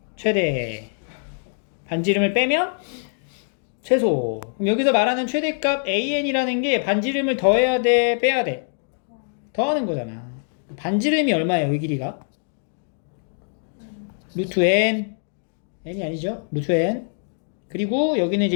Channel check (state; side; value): silent; right; 63 dB below the other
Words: 최대. 반지름을 빼면 최소. 그럼 여기서 말하는 최대값 AN이라는 게 반지름을 더해야 돼, 빼야 돼? 더하는 거잖아. 반지름이 얼마예요, 이 길이가? 루트 N. N이 아니죠? 루트 N. 그리고 여기는